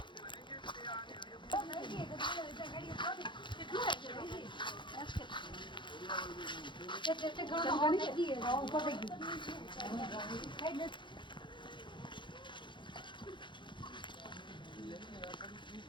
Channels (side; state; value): right; late; 0.23 ms